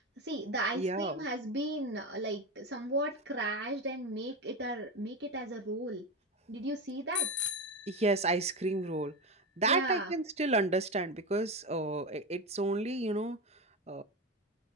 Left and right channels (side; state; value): both; normal; correlation 0.17